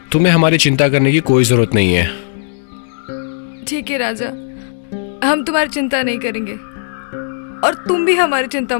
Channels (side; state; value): right; silent; digital silence